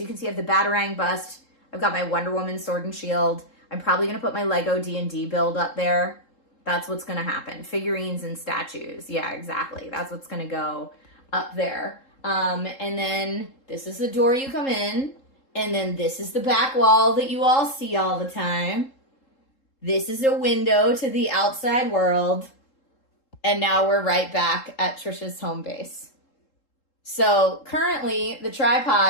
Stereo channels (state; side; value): late; right; 3.7 ms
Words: you can see I have the Batarang bust. I've got my Wonder Woman sword and shield. I'm probably going to put my Lego D&D build up there. That's what's going to happen. Figurines and statues. Yeah, exactly. That's what's going to go up there. And then this is the door you come in. And then this is the back wall that you all see all the time. This is a window to the outside world. And now we're right back at Trisha's home base. So currently the